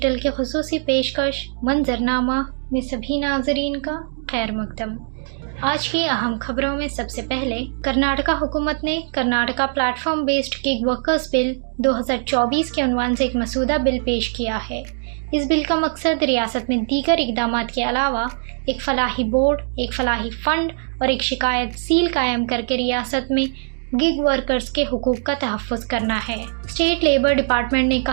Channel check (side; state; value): left; silent; digital silence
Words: کی خصوصی پیشکش منظرنامہ میں سبھی ناظرین کا خیر مقدم۔ آج کی اہم خبروں میں سب سے پہلے کرناٹکا حکومت نے Karnataka platform based gig workers bill 2024 کے عنوان سے ایک مسودہ بل پیش کیا ہے۔ اس بل کا مقصد ریاست میں دیگر اقدامات کے علاوہ ایک فلاحی بورڈ، ایک فلاحی فنڈ اور ایک شکایت سیل قائم کر کے ریاست میں گگ ورکرز کے حقوق کا تحفظ کرنا ہے۔ اسٹیٹ لیبر ڈپارٹمنٹ نے